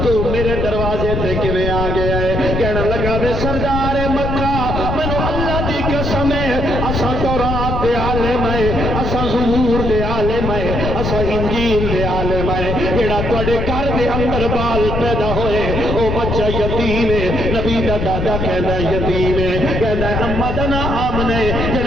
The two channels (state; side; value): noise; left; rumble, 2 dB below the sound